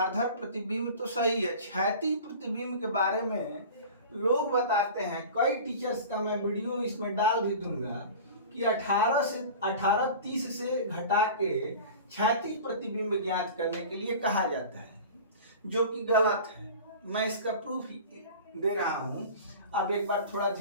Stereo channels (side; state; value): both; inverted; correlation -0.37